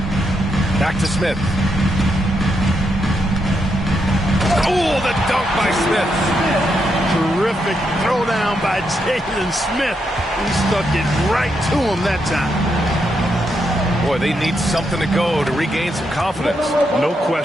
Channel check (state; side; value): normal; both; correlation 0.81